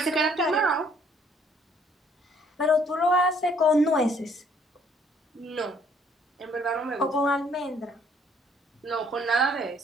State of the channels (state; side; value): normal; both; correlation 0.63